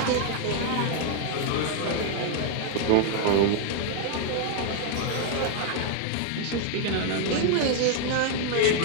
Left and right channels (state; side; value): different; both; correlation 0.00